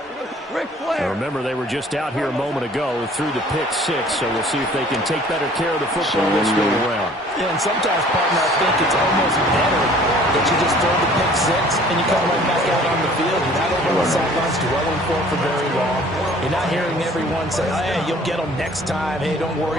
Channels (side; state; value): both; normal; correlation 0.52